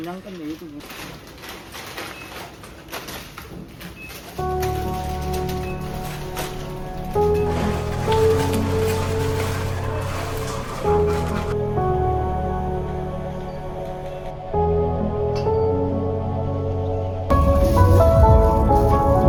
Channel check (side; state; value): both; identical; correlation 1.00